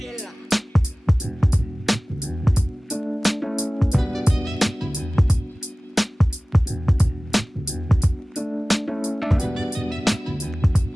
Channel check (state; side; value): normal; both; correlation 0.98